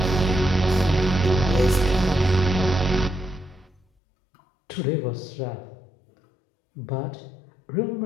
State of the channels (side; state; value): right; drops out; at 3.9 s